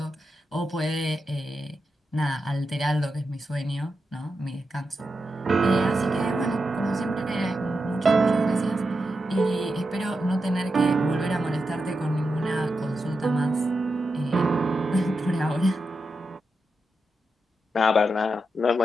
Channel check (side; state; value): both; normal; correlation 0.88